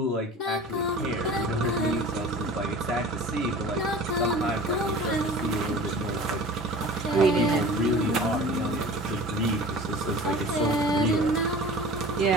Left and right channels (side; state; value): both; normal; correlation 0.40